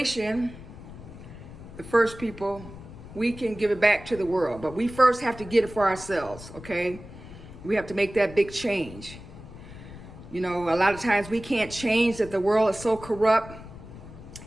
the first people, we can give it back to the world, but we first have to get it for ourselves, okay? We have to make that big change. You know, a lot of times we can't change that the world is so corrupt,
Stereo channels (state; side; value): noise; left; rumble, 15 dB below the sound